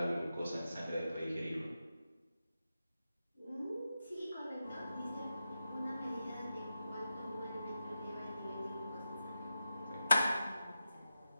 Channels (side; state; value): both; inverted; correlation -0.90